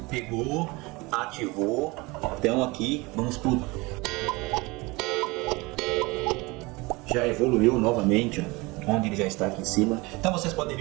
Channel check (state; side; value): quieter; left; 24.1 dB